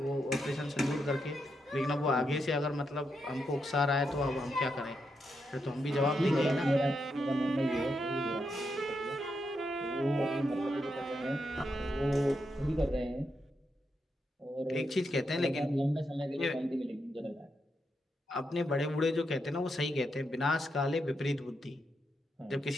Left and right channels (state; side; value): normal; both; correlation 0.83